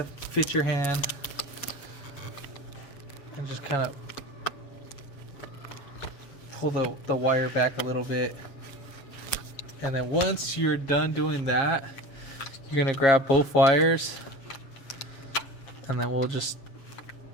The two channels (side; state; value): right; late; 7.3 ms